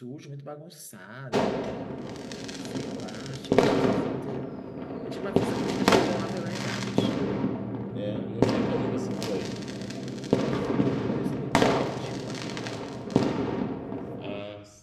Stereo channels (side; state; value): both; identical; correlation 1.00